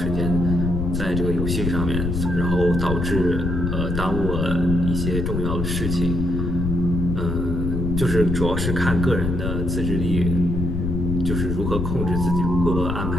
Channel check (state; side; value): noise; left; rumble, 1 dB below the sound